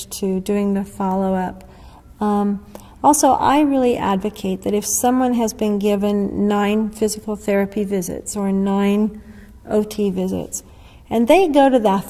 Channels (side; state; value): both; identical; correlation 1.00